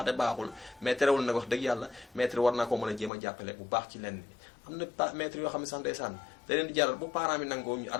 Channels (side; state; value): right; drops out; at 3.1 s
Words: baaxul mais terewul nag wax dëgg yàlla maître war naa ko mën a jéem a jàppale bu baax ci lenn am na maître yoo xam ne sax ndeysaan da leen di jaral bu parents bi nangoo ñu